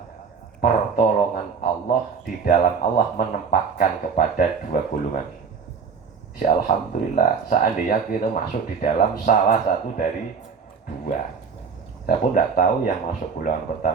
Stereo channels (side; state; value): left; quieter; 5.9 dB